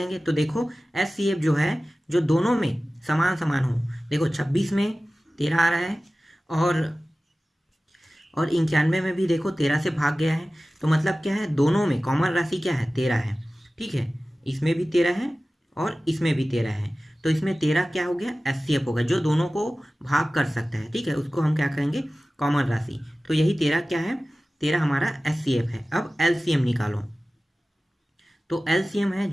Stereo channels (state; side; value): normal; both; correlation 0.97